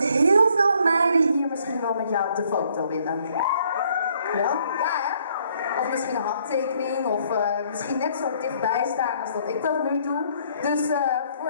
veel meiden hier misschien wel met jou op de foto willen. Ja? Ja, hè? Of misschien een handtekening, of misschien net zo dichtbij staan als dat ik dat nu doe. Dus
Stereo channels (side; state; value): both; inverted; correlation -0.65